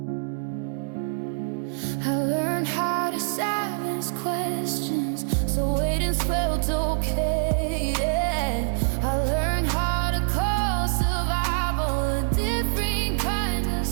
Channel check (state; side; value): silent; left; digital silence